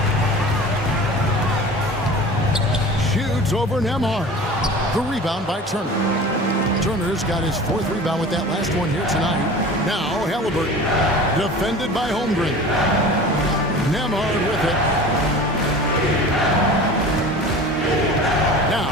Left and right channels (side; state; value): both; normal; correlation 0.38